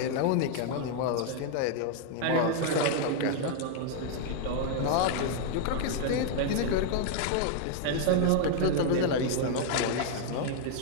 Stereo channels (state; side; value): different; both; correlation 0.00